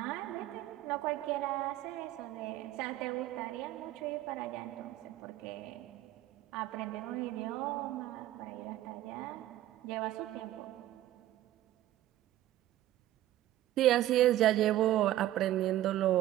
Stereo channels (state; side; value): quieter; left; 14.1 dB